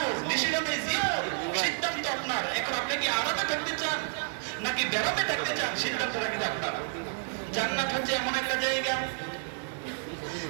ডিসিশন ইজ ইয়োর, সিদ্ধান্ত আপনার। এখন আপনি কি আরামে থাকতে চান নাকি বেরামে থাকতে চান, সিদ্ধান্তটা কিন্তু আপনার। জান্নাত হচ্ছে এমন একটা জায়গা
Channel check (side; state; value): left; silent; 58 dB below the other